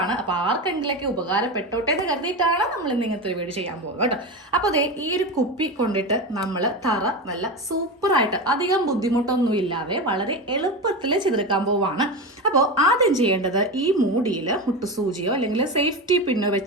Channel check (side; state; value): both; normal; correlation 0.20